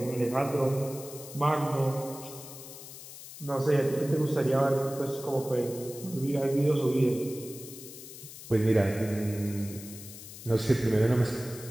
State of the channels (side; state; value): left; noise; hiss, 14 dB below the sound